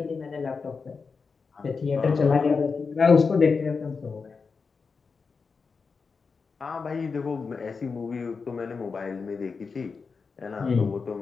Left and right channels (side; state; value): right; quieter; 5.0 dB